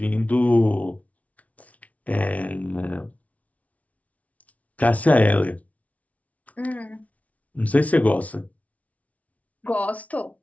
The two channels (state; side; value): late; right; 0.068 ms